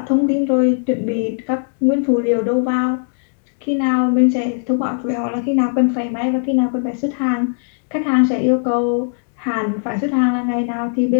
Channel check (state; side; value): silent; right; digital silence